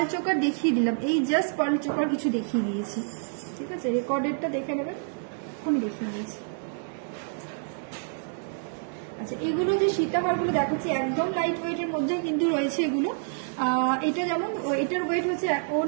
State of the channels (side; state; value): left; silent; digital silence